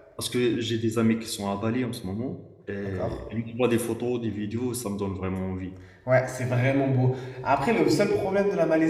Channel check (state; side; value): identical; both; correlation 1.00